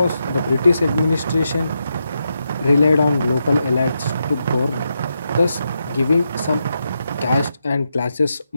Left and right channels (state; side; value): inverted; both; correlation -0.85